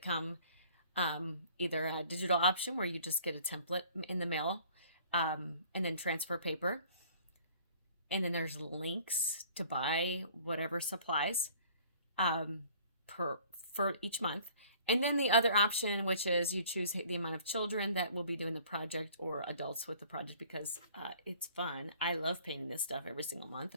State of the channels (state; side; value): inverted; both; correlation -0.53